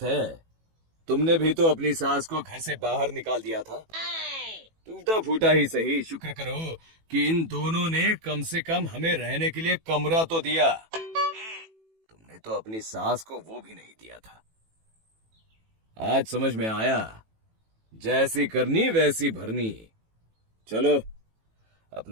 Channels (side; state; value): left; late; 18 ms